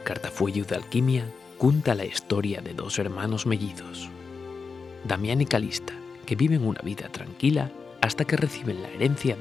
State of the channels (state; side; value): quieter; right; 5.0 dB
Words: cartafuello de alquimia cuenta la historia de dos hermanos mellizos, Damián y Calista, que viven una vida tranquila hasta que reciben la herencia